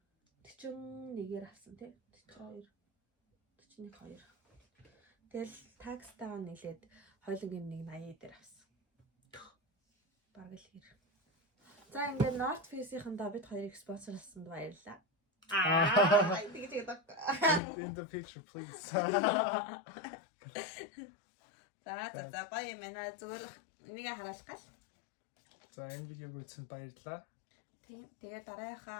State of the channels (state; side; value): drops out; right; at 17.6 s